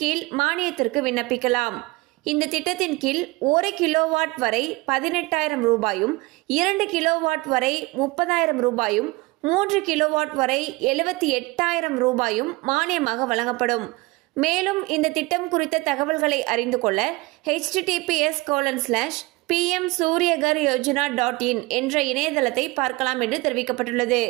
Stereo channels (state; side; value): quieter; left; 22.8 dB